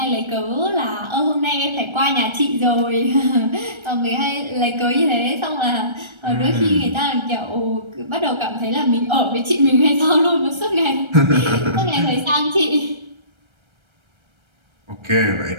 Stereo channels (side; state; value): left; late; 1.3 ms